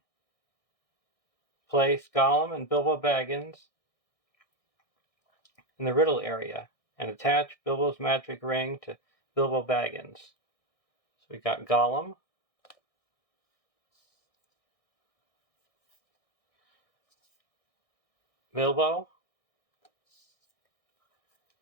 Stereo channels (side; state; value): right; late; 1.6 ms